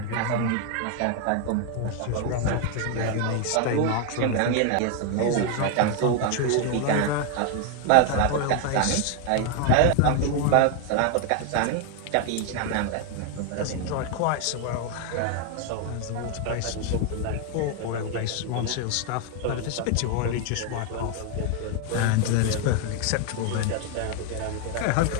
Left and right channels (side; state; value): both; different; correlation 0.01